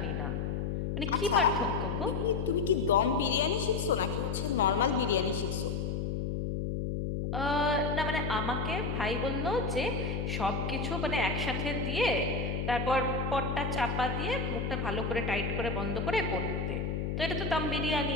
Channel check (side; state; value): left; noise; hum, 1 dB below the sound